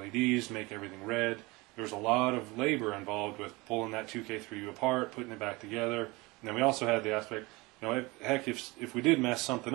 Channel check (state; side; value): quieter; left; 23.7 dB